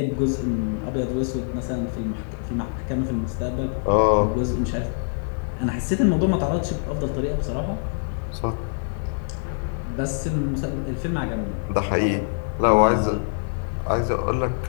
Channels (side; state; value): right; silent; 62 dB below the other